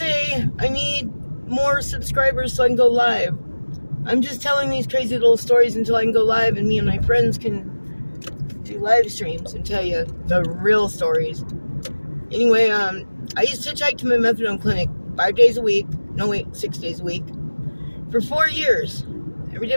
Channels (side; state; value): both; inverted; correlation -1.00